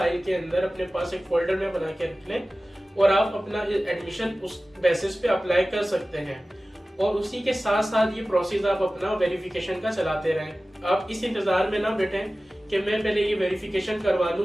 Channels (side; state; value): both; normal; correlation 0.96